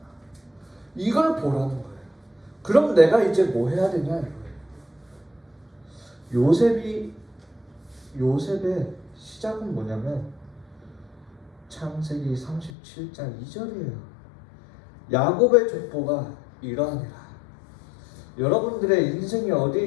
이걸 보라는 거예요. 그럼 내가 이제 뭐 해야 되냐 이거예요. 요셉의 시작은 뭐냐면 창세기 37장 2절이에요. 야곱의 족보가 이러하니라. 여러분들의 인생이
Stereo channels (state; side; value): drops out; right; at 12.7 s